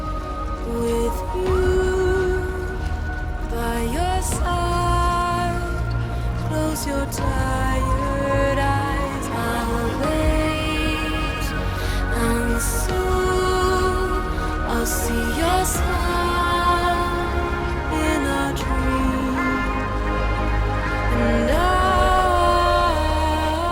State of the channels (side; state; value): both; identical; correlation 1.00